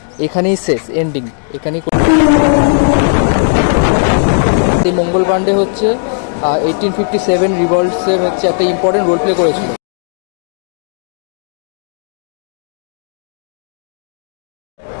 এখানেই শেষ, এন্ডিং এখানেই। এই মঙ্গল পাণ্ডে হচ্ছে 1857 রিভলটসের হচ্ছে একটা ইম্পর্টেন্ট রোল প্লে করেছিল।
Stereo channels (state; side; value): silent; right; 61 dB below the other